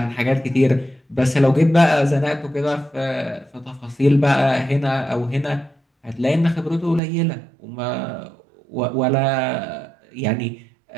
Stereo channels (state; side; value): drops out; left; at 7.0 s